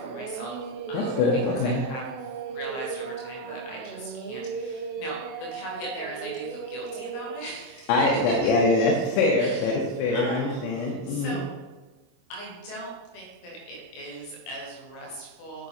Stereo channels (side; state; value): right; late; 23 ms